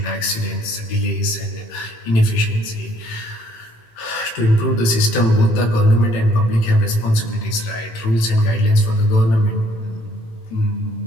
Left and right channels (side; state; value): right; late; 18 ms